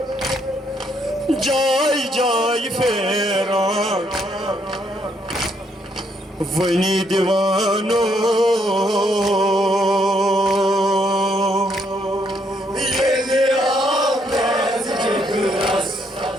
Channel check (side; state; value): both; normal; correlation 0.73